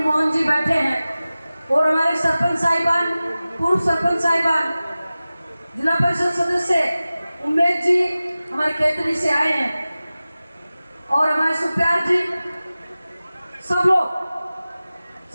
मोहन जी बैठे हैं और हमारे सरपंच साहिबान, पूर्व सरपंच साहिबान, जिला परिषद सदस्य उमेश जी हमारे खेतरी से आए हैं और हमारे सुप्यार जी, सब लोग,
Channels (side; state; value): both; inverted; correlation -0.97